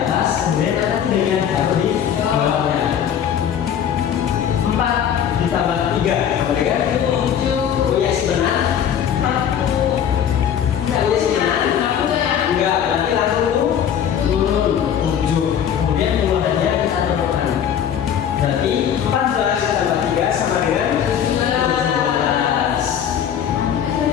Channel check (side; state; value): right; quieter; 9.0 dB